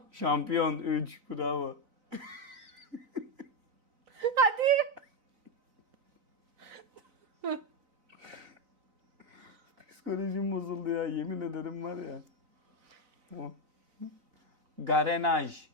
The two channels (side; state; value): left; late; 4.0 ms